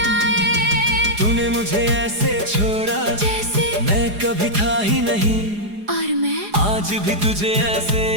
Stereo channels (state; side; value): late; left; 4.8 ms